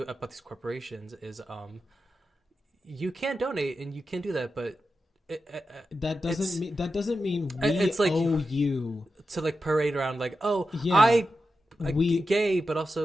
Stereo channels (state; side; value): normal; both; correlation 0.90